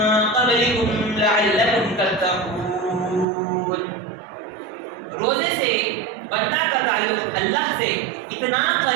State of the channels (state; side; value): drops out; left; at 3.2 s